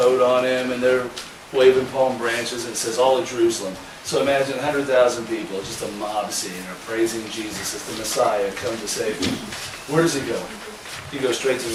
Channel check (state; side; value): identical; both; correlation 1.00